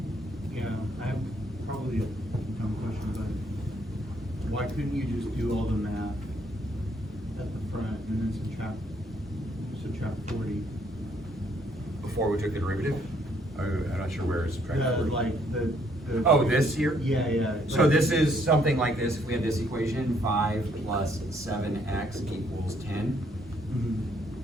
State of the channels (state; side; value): normal; both; correlation 0.68